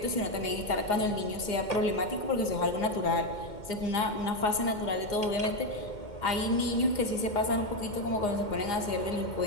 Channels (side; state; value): right; late; 2.1 ms